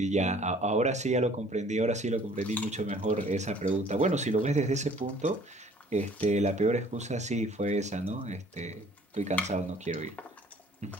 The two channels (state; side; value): normal; both; correlation 0.55